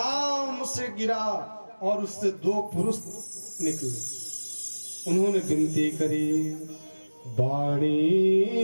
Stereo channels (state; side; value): inverted; both; correlation -1.00